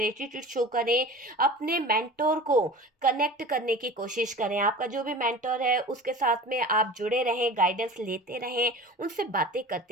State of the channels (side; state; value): both; normal; correlation 0.38